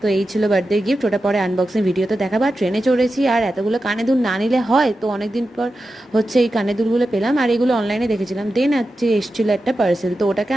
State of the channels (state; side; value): normal; both; correlation 0.91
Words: তো এই ছিল বার্থডে গিফট, ওটা পরে আনবক্সিং ভিডিওতে দেখাবো। আর ট্রেনে চড়েছি আর এতগুলো কানে দুল না নিলে হয়, তো অনেকদিন পর হচ্ছে এই কানে দুলগুলো পেলাম, আর এগুলো অনলাইনে দেখেছিলাম। দেন হচ্ছে এসেছিলো একটা পার্সেল, তো ওটাকে